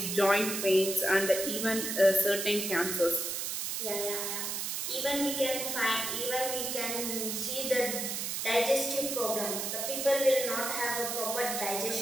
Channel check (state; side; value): noise; right; hiss, 2 dB below the sound